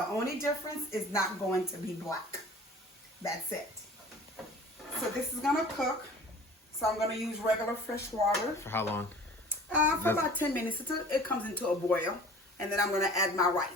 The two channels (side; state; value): both; normal; correlation 0.45